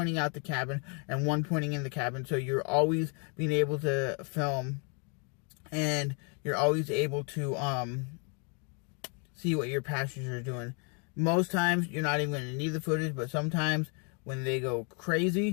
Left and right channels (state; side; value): quieter; right; 37.5 dB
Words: out the cabin and one pointing in the cabin. So you're always being able to film and you're always able to see what your passengers are doing. Most times you're not even going to need the footage, but sometimes when they go